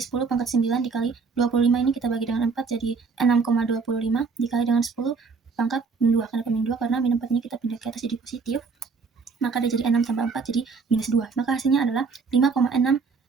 pangkat 9 dikali 25 ini kita bagi dengan 4 jadi 6,25 dikali dengan 10 pangkat min 2. Kenapa min 2? Karena min 4 ini kita pindah ke atas jadi positif, maka dia jadi 6 tambah 4 jadi minus 2. Maka hasilnya adalah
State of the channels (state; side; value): quieter; left; 4.9 dB